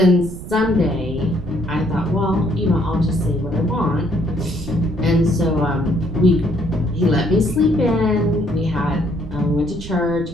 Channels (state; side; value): noise; right; rumble, 12 dB below the sound